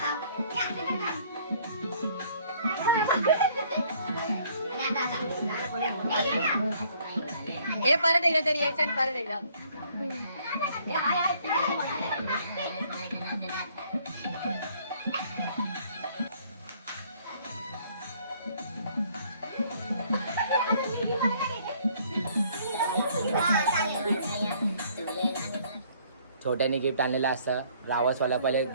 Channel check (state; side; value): inverted; both; correlation -0.61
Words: हे परत एकदा तरी यायचं परत एकदा छोट्याने गिफ्ट आणलेला असतं रावसवाला पहिले